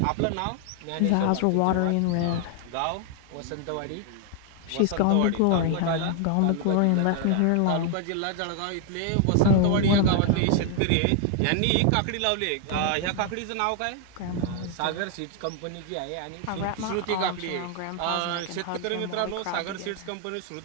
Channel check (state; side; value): different; both; correlation 0.00